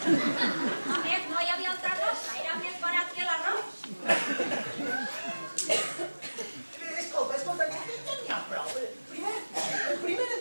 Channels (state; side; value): inverted; both; correlation -1.00